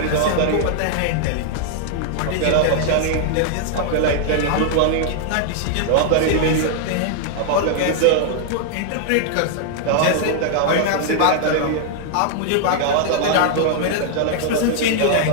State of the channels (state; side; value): different; both; correlation 0.00